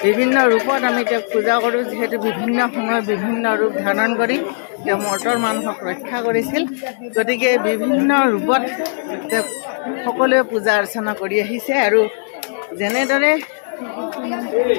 বিভিন্ন ৰূপত আমি তেওঁক পূজা কৰোঁ। যিহেতু বিভিন্ন সময়ত বিভিন্ন ৰূপ ধাৰণ কৰি তেওঁ মৰ্তৰ মানুহক ৰক্ষা কৰিছিল, গতিকে বিভিন্ন ৰূপত তেওঁক সকলোৱে পূজা অৰ্চনা কৰি আহিছে। আৰু যেনেদৰে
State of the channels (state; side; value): silent; right; digital silence